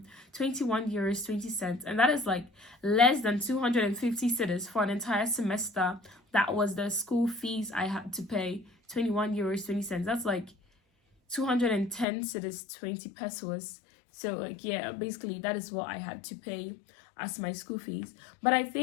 21 euros 20 cents, and that is less than 250 cedis for an entire semester. That was the school fees I had to pay, 21 euros 20 cents. That's 210 cedis, 20 pesos. So yeah, basically that is what I had to pay as my school fees. But I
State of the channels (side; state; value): right; drops out; at 12.1 s